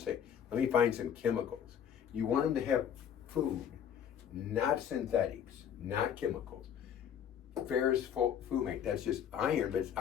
let me find some chemicals. You want them to have food, not synthetics, not chemicals. Ferrous fumate, that's just iron, but it's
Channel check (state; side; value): quieter; right; 8.8 dB